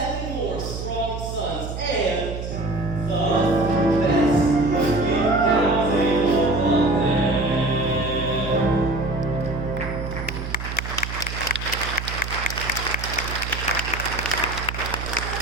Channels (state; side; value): noise; right; hum, 7 dB below the sound